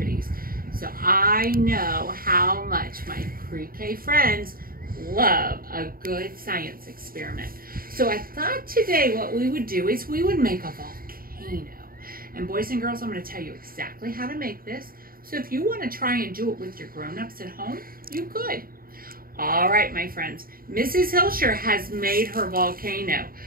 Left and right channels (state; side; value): late; left; 0.42 ms